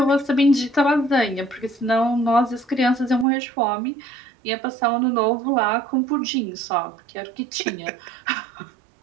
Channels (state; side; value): drops out; left; at 3.2 s